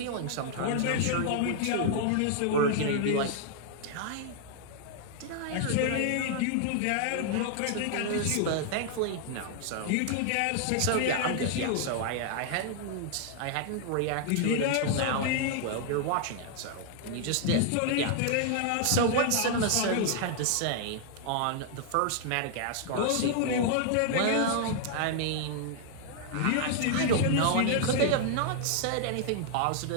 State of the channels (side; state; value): both; different; correlation 0.00